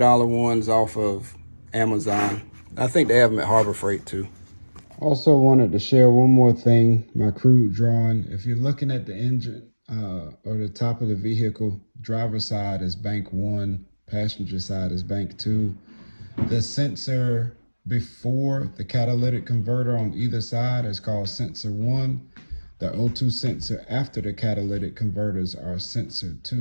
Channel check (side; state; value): both; inverted; correlation -1.00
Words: ones off of Amazon. I think they have them at Harbor Freight too. Also wanted to share one more thing, my crude drawing. If you're looking at the engine or the top of the vehicle, driver side is bank 1, passenger side is bank 2. The sensor before the catalytic converter on either side is called sensor 1. The O2 sensor after the catalytic converters are sensor